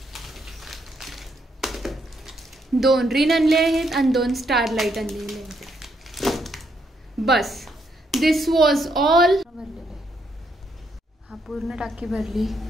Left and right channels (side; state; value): both; normal; correlation 0.75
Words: 2 रिन आणले आहेत आणि 2 स्टार लाईट आणलेले आहेत. बस दिस वॉज ऑल. हा पूर्ण टाकी भरली.